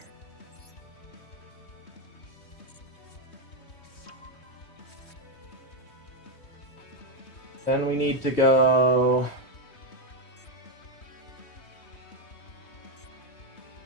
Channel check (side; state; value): right; late; 3.2 ms